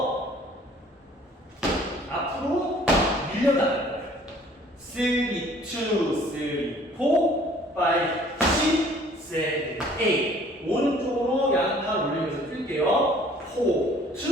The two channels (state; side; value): normal; both; correlation 0.54